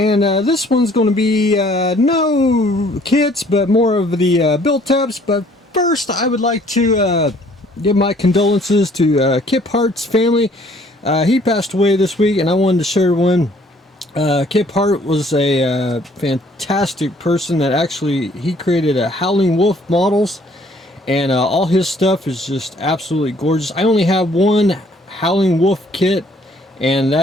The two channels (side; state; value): both; normal; correlation 0.60